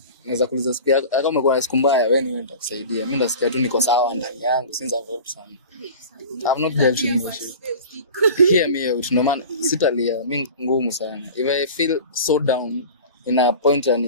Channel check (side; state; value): both; inverted; correlation -0.37